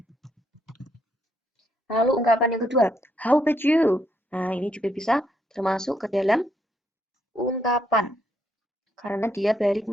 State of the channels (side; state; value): both; normal; correlation 0.75